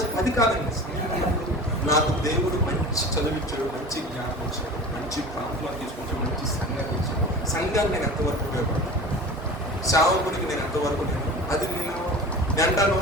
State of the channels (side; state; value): both; normal; correlation 0.36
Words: అది కాదండి. నాకు దేవుడు మంచి చదివించాడు, మంచి జ్ఞానం ఇచ్చాడు, మంచి ప్రాంతంలో తీసుకొచ్చాడు, మంచి సంఘాన్ని ఇచ్చాడు. సంఘాన్ని నేను ఎంతవరకు ఉపయోగపడతాను, సేవకుడికి నేను ఎంతవరకు అది నేను అంటాను.